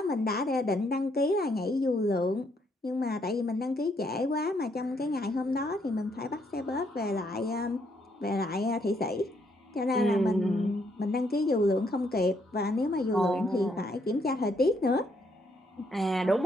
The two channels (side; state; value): both; normal; correlation 0.73